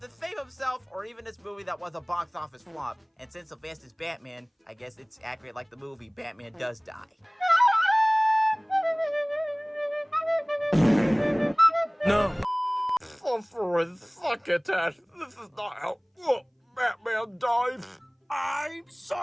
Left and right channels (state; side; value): identical; both; correlation 1.00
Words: to save himself or even this movie that was a box office flop. And since Sylvester is Batman, I guess it's accurate like the movie Batman does die. No. Suffering succotash. This is not how Batman dies. I'm